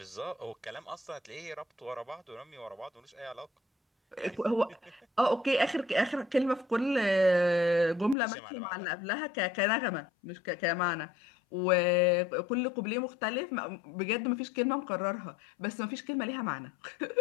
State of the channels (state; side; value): drops out; right; at 8.2 s